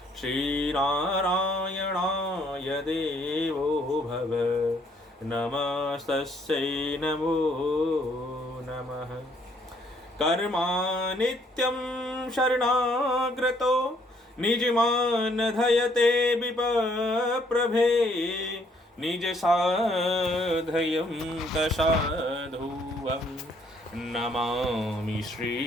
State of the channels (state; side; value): normal; both; correlation 0.66